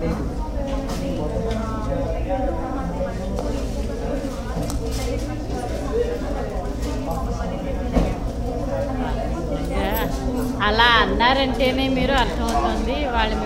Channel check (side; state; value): both; identical; correlation 1.00